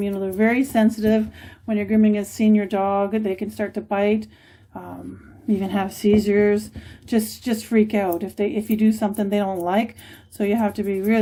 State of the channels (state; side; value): identical; both; correlation 1.00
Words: You know, they're very sensitive when you're grooming a senior dog. They can start to bite, even have seizures, just freak out if you do something they don't like. So you have to be